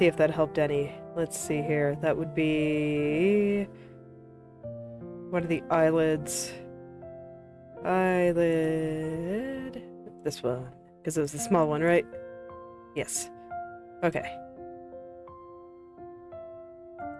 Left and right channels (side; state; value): both; identical; correlation 1.00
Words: if that helped any. Let's see here. That would be one of the eyelids. Eyelid. This one, because it was the small one, right? Yes. Okay.